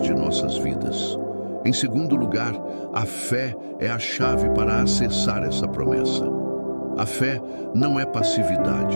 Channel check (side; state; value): both; inverted; correlation -1.00